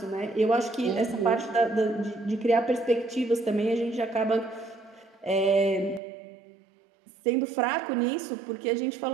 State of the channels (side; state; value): left; drops out; at 6.0 s